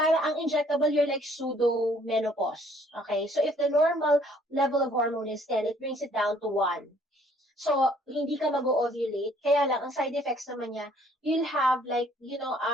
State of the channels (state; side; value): normal; both; correlation 0.60